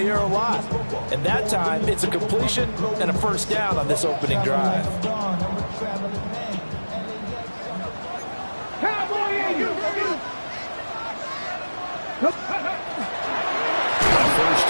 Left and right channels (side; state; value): both; inverted; correlation -1.00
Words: air a lot. And that time, it's a completion and a first down on this opening drive. first